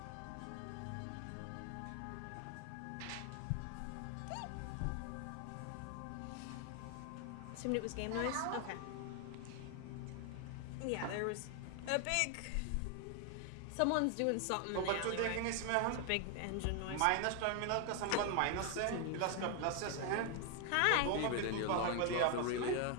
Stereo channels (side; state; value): both; different; correlation 0.00